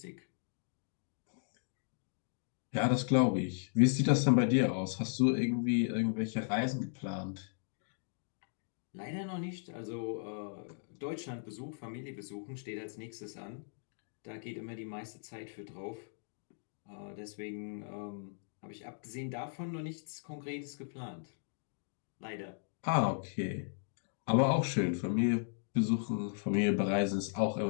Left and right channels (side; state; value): right; silent; digital silence